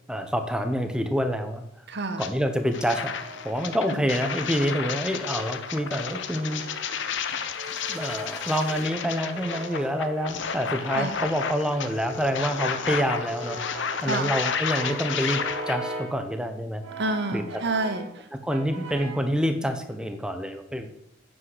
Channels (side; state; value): both; normal; correlation 0.60